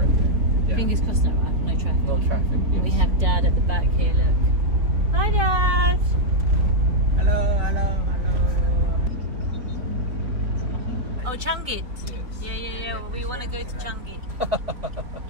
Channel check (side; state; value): left; late; 3.9 ms